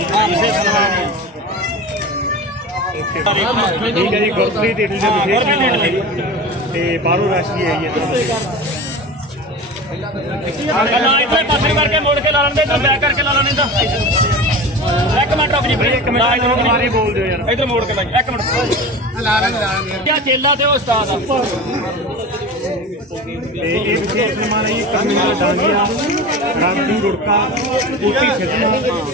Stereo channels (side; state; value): both; normal; correlation 0.31